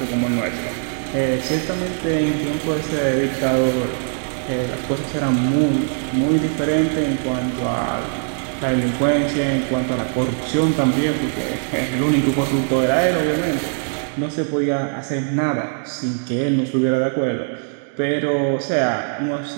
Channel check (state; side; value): silent; left; 59 dB below the other